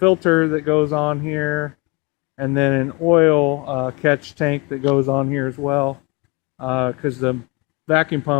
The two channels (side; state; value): right; quieter; 27.4 dB